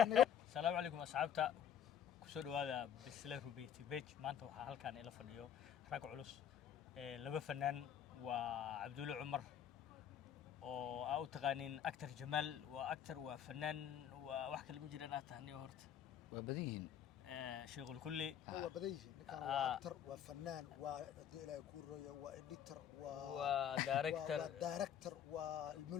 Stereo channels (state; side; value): quieter; right; 9.2 dB